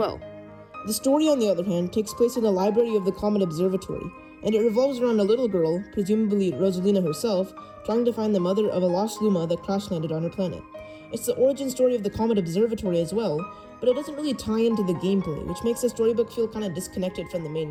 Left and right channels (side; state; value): both; identical; correlation 1.00